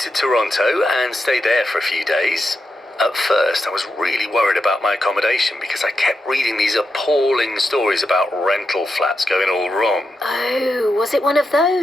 Toronto and stayed there for a few days. At first, I was really worried about my accommodation because I kept reading these appalling stories about rental flats going all wrong. Oh, was it one of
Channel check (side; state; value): both; normal; correlation 0.86